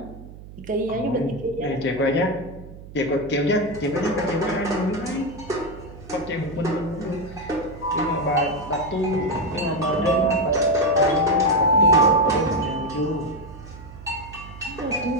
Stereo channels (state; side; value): noise; right; hum, 16 dB below the sound